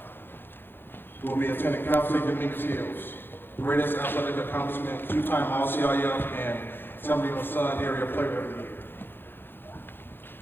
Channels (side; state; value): right; late; 0.10 ms